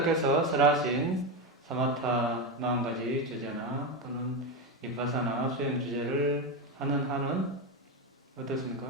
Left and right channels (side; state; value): both; normal; correlation 0.13